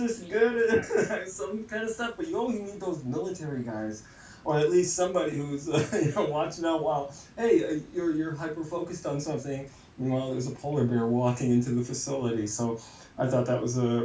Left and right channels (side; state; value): both; identical; correlation 1.00